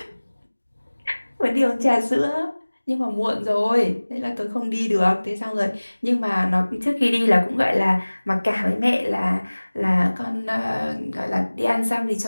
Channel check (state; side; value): inverted; both; correlation -1.00